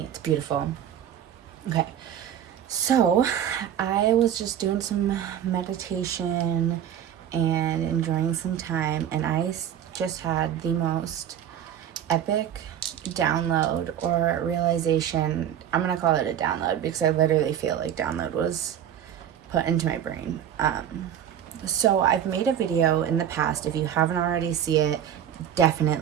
It's beautiful. Okay. So I was just doing some meditation and enjoying some time, and I just had the most epic download or realization. I'm gonna call it a download because I literally feel like download was put into my brain. So I've made a video in the past. If you haven't already seen it,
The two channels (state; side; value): quieter; left; 10.0 dB